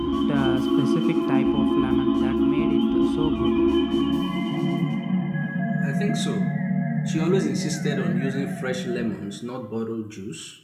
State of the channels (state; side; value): identical; both; correlation 1.00